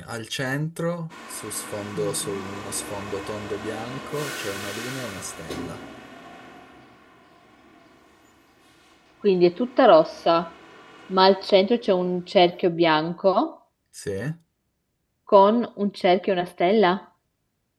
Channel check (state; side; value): identical; both; correlation 1.00